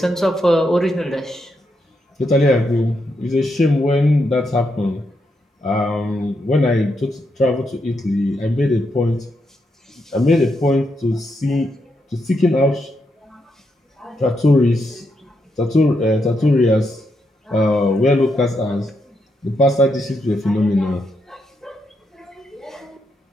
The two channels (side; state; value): both; normal; correlation 0.81